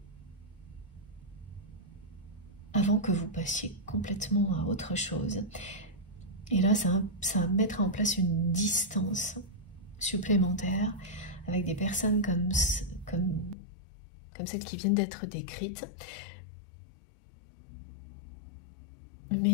avant que vous passiez complètement à autre chose. Et là, ça va mettre en place une distance supplémentaire avec des personnes comme celles qui viennent d'être décrites.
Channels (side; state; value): right; drops out; at 13.6 s